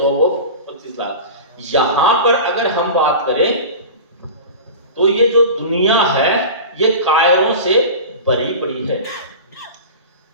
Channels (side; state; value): both; inverted; correlation -0.32